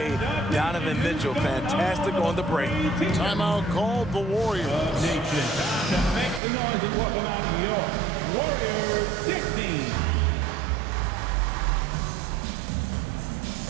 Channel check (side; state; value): left; drops out; at 6.4 s